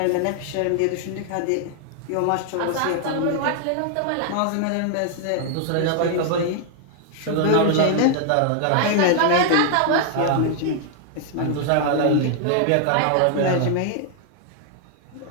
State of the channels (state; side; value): different; both; correlation 0.00